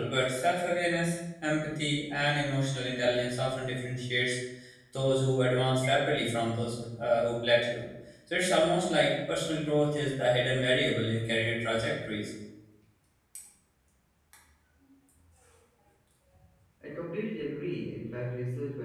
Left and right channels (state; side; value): identical; both; correlation 1.00